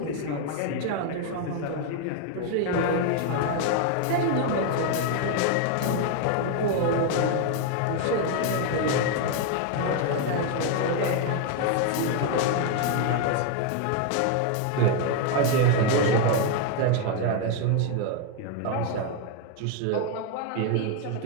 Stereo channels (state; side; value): different; both; correlation 0.01